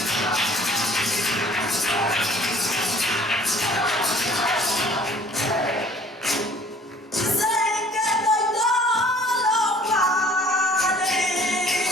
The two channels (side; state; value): both; normal; correlation 0.54